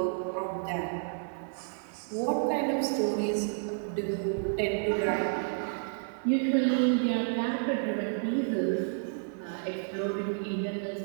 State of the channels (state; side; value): silent; left; 57 dB below the other